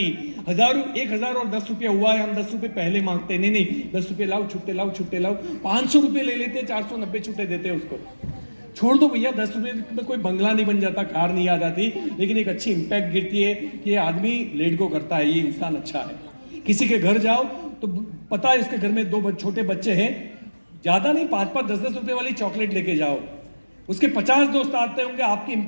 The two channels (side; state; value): both; inverted; correlation -1.00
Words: 1000 और 10 रुपया हुआ है, हम 10 रुपये पहले मांगते नहीं, 10 रुपये लाओ, छुट्टे लाओ, छुट्टे लाओ, 500 रुपये ले लेते, 490 छुट्टे देते उसको। छोड़ दो भैया, 10 रुपये में कोई बंगला नहीं बन जाता, कार नहीं आ जाती, लेकिन एक अच्छी इंपैक्ट गिरती है कि ये आदमी लेट गो करता है, ये इंसान अच्छा है। किसी के घर जाओ तो पता है इसके घर में 2 छोटे बच्चे हैं, ज्यादा नहीं, 5-5, 10-10 रुपए वाली चॉकलेट लेके जाओ, उसके 50 दोस्त आते होंगे, आपकी